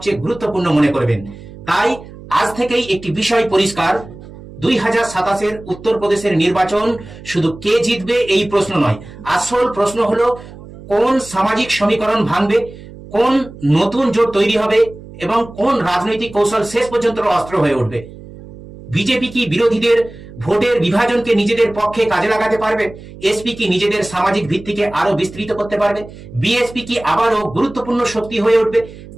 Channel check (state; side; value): noise; right; hum, 17 dB below the sound